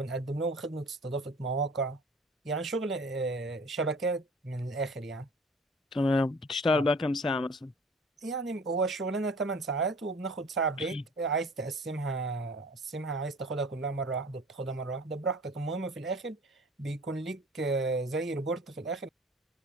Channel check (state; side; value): normal; both; correlation 0.46